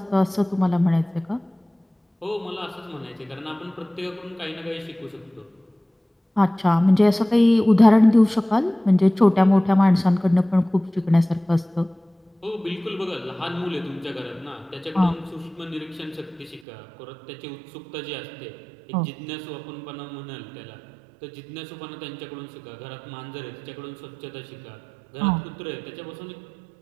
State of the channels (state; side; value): drops out; left; at 16.6 s